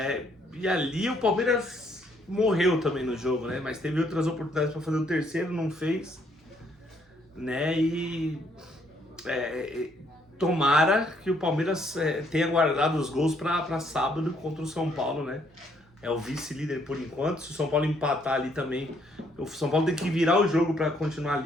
E ali o Palmeiras morreu também no jogo, né? Mas teve outras oportunidades para fazer o terceiro, não fez, né? E tomara que o Palmeiras tenha guardado os gols para sábado contra o São Paulo, né? É o vice-líder por enquanto. Se o São Paulo empatar ali também, o São Paulo tem que virar o jogo para continuar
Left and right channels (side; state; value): both; normal; correlation 0.69